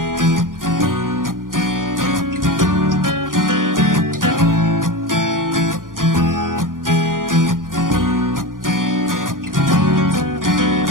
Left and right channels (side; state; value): left; late; 0.90 ms